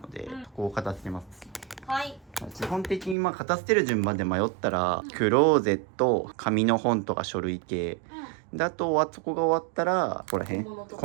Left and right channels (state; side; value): drops out; left; at 3.2 s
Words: で、ここを片付けます。はい。基本的にまあ片捨てる順番で迷ったら、クローゼット、紙の本とか書類系。で、あとはそこが終わったら、ここら辺、